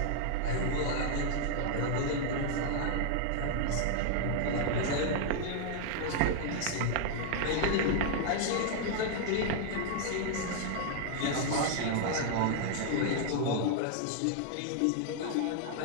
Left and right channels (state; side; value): different; both; correlation -0.01